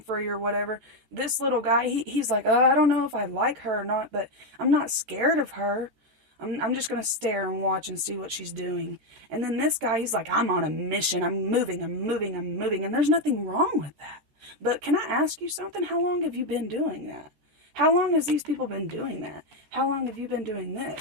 or whatever. This little guy, he's like, oh, I don't know if I like her or not, but I'm not scared of her. I'm just going to stare and watch and see what she's doing. And then this guy, he's like, I'm on a mission. I'm moving. And there's nothing wrong with that. But can I ask you something? How long have you been doing that? How long has these people been doing that? How long have you been doing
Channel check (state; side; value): late; left; 14 ms